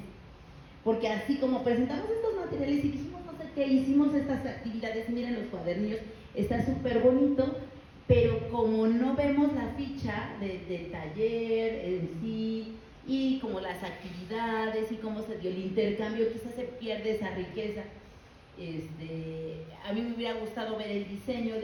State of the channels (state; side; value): identical; both; correlation 1.00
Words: Porque así como presentamos estos materiales y dijimos no sé qué, hicimos estas actividades, miren los cuadernillos, está súper bonito, pero como no vemos la ficha del taller en sí, y como las actividades y cómo se dio el intercambio, quizás se pierde esa riqueza. A mí me hubiera gustado ver el diseño